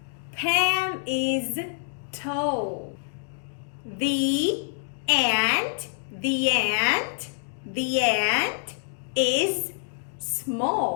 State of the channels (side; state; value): right; silent; digital silence